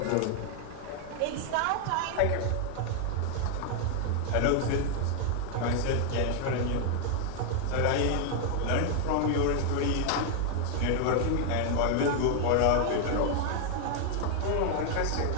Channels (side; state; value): both; different; correlation 0.00